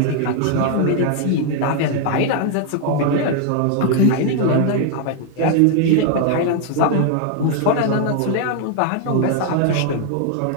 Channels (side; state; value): both; different; correlation 0.00